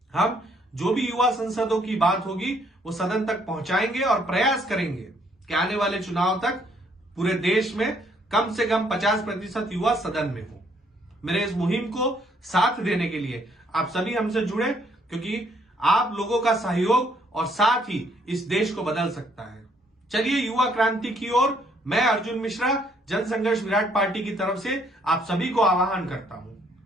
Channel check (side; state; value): both; normal; correlation 0.67